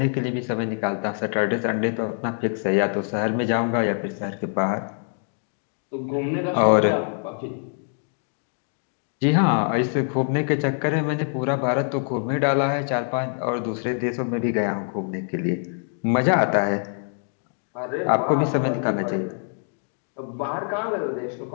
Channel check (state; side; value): silent; right; 61 dB below the other